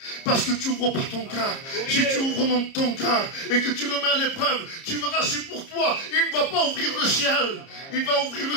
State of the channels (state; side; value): late; right; 30 ms